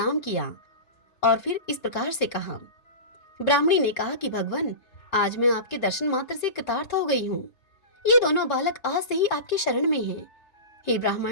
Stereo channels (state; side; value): late; right; 3.6 ms